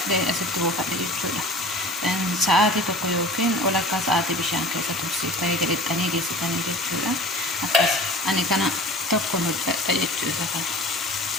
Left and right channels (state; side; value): normal; both; correlation 0.41